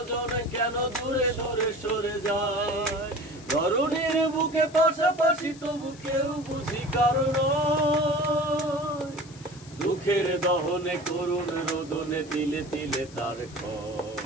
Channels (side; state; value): left; noise; hiss, 21 dB below the sound